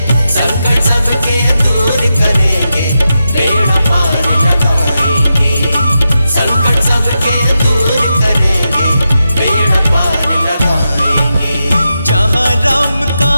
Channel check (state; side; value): inverted; both; correlation -0.88